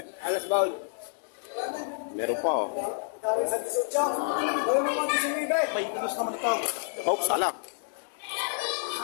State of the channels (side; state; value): right; silent; digital silence